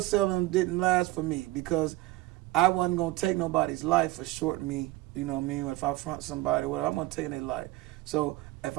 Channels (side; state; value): left; quieter; 18.5 dB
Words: didn't last for me because I wasn't gonna take nobody's life for shorting me. You know what I mean? If I front somebody, whatever, I'm gonna take their life. So if